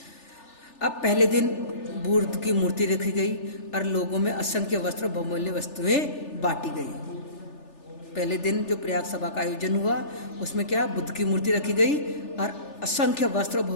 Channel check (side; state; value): right; late; 3.4 ms